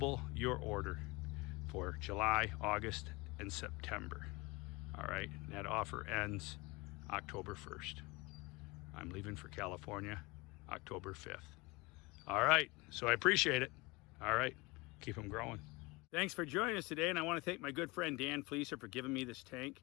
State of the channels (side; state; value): right; quieter; 24.6 dB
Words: your order for July, August, and September. All right, and that offer ends October 1st. I'm leaving for California October 5th. All right, so I appreciate it. All right, keep them growing. Thanks for joining us today, and I want to thank my good friend Dan Fleeser for giving me this tank.